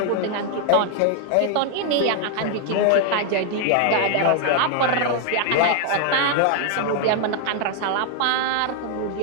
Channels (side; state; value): both; different; correlation 0.00